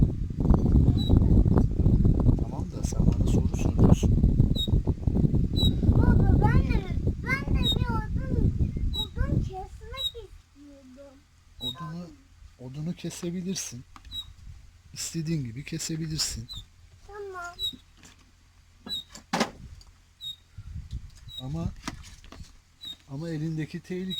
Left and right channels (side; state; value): both; identical; correlation 1.00